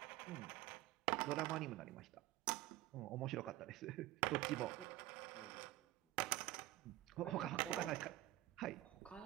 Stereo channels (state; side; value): quieter; left; 16.6 dB